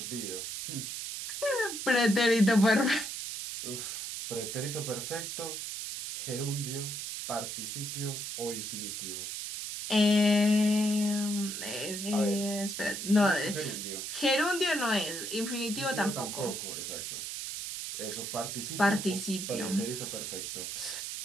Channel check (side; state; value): right; noise; hiss, 5 dB below the sound